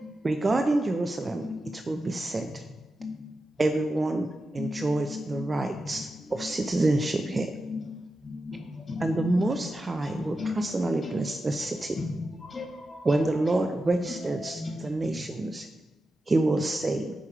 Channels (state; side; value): normal; both; correlation 0.91